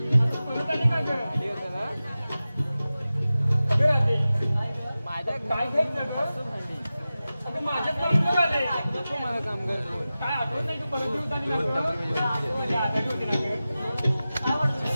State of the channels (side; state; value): both; inverted; correlation -0.95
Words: परत आली का ग अगं राधे माझ्या काय घ्यायचं ग अगं माझ्याच परत आले नको मला काम कर काय आठवत नाही तू परत दिवस आली ना ग आजारी होती ना ग काय वाटतं